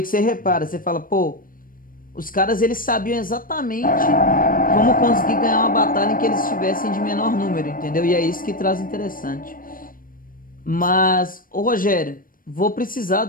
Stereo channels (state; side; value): late; right; 0.41 ms